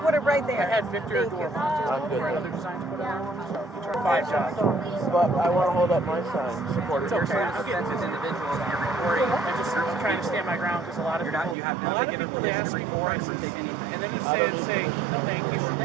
put it right there. I had Victor do a I'm good. other design to put it on, so we tried 5 jobs. But I want to hold up my sign. Support it. It's okay. I'm getting Offensive individuals and you're recording. I'm trying to stand my ground because a lot of people, You have a not lot of given people, they permission ask to me record for or take prices, anything. and then you say, no thank you.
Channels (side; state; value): left; drops out; at 11.6 s